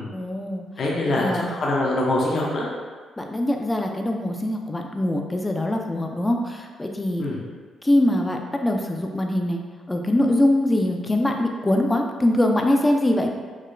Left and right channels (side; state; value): both; normal; correlation 0.90